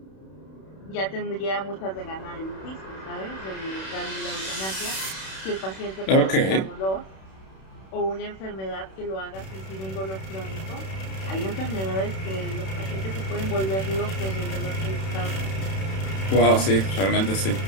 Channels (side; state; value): right; late; 31 ms